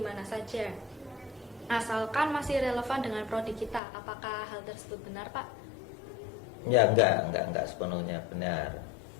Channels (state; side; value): drops out; right; at 3.8 s